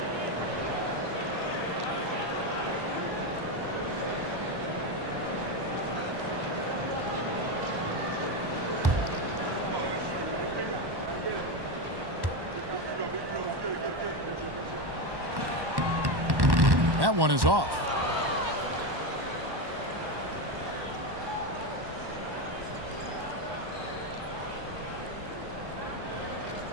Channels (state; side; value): late; left; 1.1 ms